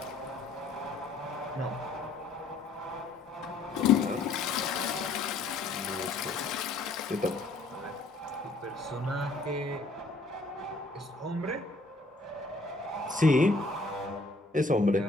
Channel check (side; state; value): right; quieter; 3.1 dB